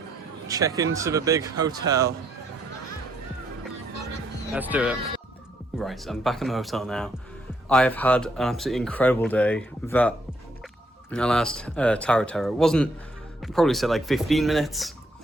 check into the big hotel. Let's do it. Right, I'm back in the hotel now. I have had an absolutely incredible day. That last Tower of Terror wasn't, I'd probably said like 15 minutes.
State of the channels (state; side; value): normal; both; correlation 0.73